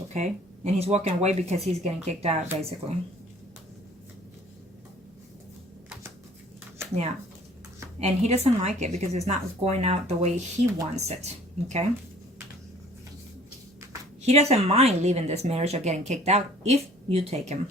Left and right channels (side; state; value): both; normal; correlation 0.52